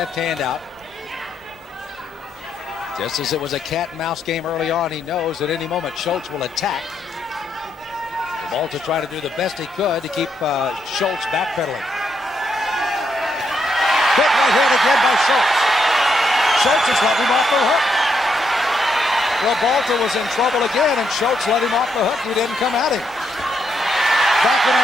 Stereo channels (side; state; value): both; normal; correlation 0.78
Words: hand out. Just as it was a cat and mouse game early on, he knows at any moment Schulz will attack. Ribalta trying to do the best he could to keep Schulz backpedaling. Big right hand again by Schulz. Schulz has let him off the hook. Ribalta was in trouble again, and Schulz let him off the hook. He didn't come at him. Backing